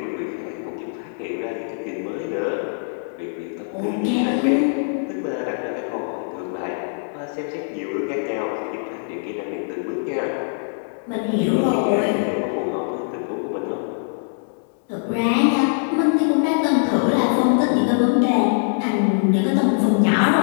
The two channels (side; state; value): right; silent; digital silence